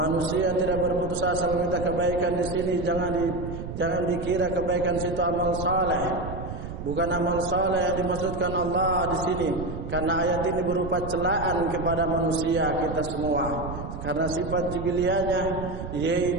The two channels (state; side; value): noise; right; rumble, 8 dB below the sound